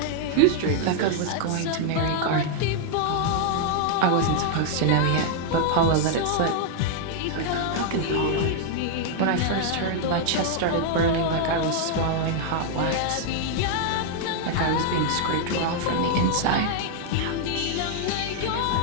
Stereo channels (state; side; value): different; both; correlation 0.00